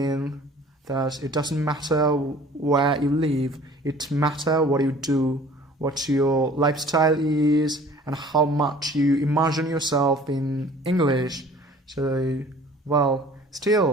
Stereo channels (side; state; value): both; normal; correlation 0.50